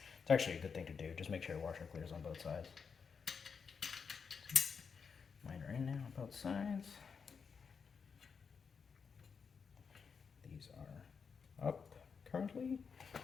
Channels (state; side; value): quieter; right; 5.9 dB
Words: actually a good thing to do. Just make sure your washer clears on both sides. Mine are in now on both sides. These are up currently,